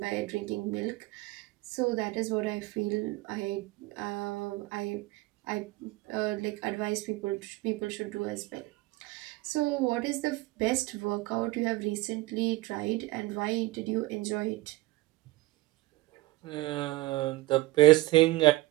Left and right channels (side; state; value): left; quieter; 19.5 dB